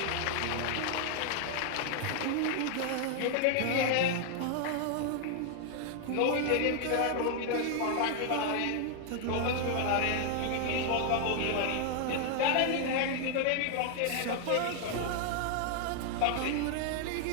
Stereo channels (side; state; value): both; different; correlation 0.00